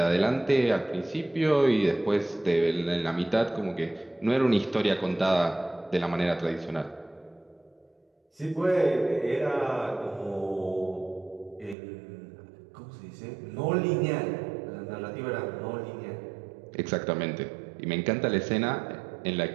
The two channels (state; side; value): drops out; left; at 11.8 s